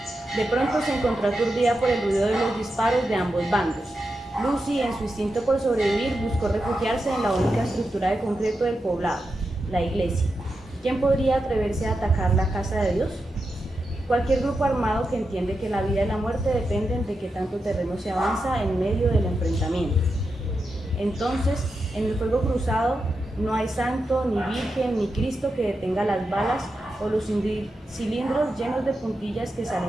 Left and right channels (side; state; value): both; normal; correlation 0.88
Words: De pronto se encontró aturdida por el ruido de los disparos de ambos bandos. Lucy, en su instinto por sobrevivir, buscó refugiarse en la única estructura de concreto del poblado, la iglesia. ¿Quién podría atreverse a atacar la casa de Dios? Cualquier grupo armado que entiende que la vida y la muerte dependen de qué tanto terreno se avanza en medio del enfrentamiento. Entonces, en el fuego cruzado no hay santo, ni virgen, ni Cristo que detenga las balas o los cilindros llenos de puntillas que